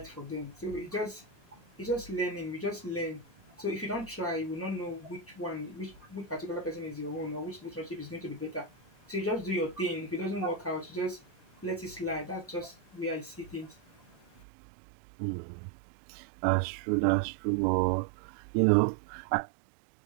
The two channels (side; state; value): left; drops out; at 14.4 s